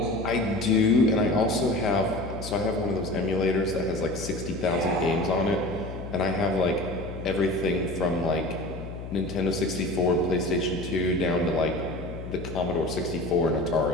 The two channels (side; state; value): left; noise; hum, 10 dB below the sound